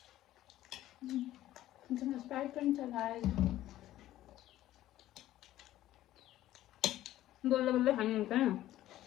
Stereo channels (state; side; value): quieter; right; 14.1 dB